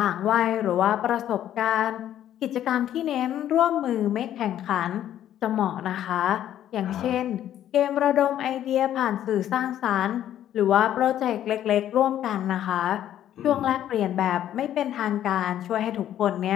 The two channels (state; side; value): quieter; right; 11.4 dB